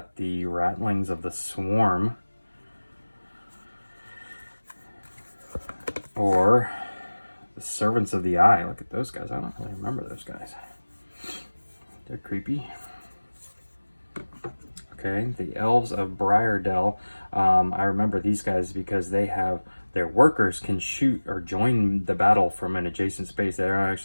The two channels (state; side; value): inverted; both; correlation -1.00